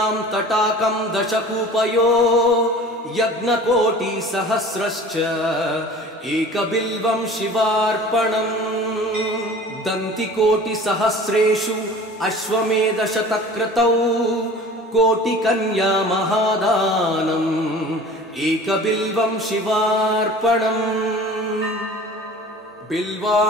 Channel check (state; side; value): normal; both; correlation 0.42